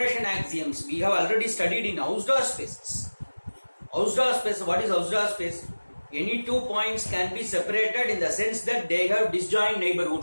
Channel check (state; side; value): inverted; both; correlation -1.00